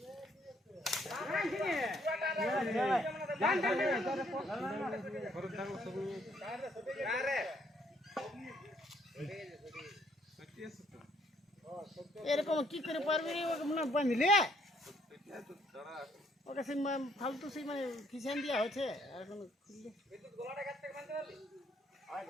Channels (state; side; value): normal; both; correlation 0.67